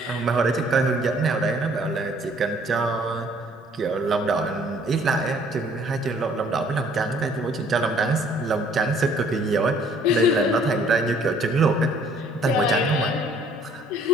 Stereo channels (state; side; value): normal; both; correlation 0.59